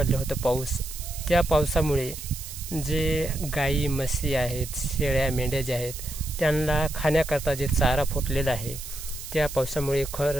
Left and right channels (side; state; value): right; noise; hiss, 11 dB below the sound